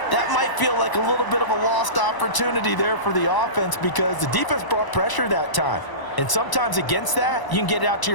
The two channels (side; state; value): right; late; 1.0 ms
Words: That might feel like a little bit of a lost opportunity there for the offense because the defense brought pressure that time. And sometimes against that, you can get it out to